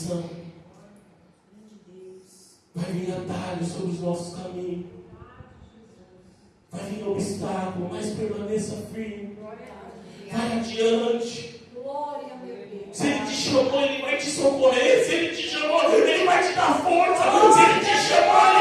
Vai vir atalho sobre os nossos caminhos. Vai vir obstáculo, mas permaneça firme. Vai adiante. Glória, meu Deus! Se Ele te chamou, Ele vai te socorrer. Se Ele te chamou, Ele vai te dar força. Se Ele te chamou,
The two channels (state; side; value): identical; both; correlation 1.00